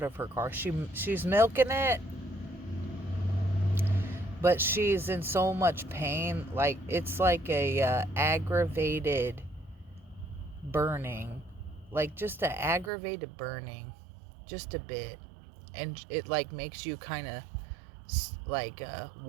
of her car. She's milking it, but she's in so much pain. Like, it's like a aggravated burning. Like, just an aggravated burning. Just a bit. And it, like, makes you kind of, like,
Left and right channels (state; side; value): drops out; left; at 12.9 s